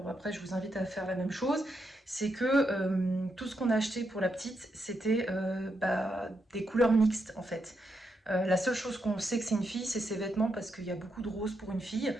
après je vous invite à faire la même chose, c'est que tout ce qu'on a acheté pour la petite, c'était des couleurs mixtes en fait. La seule chose qu'on sait que c'est une fille, c'est ses vêtements parce qu'il y a beaucoup de roses pour une fille.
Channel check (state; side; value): normal; both; correlation 0.82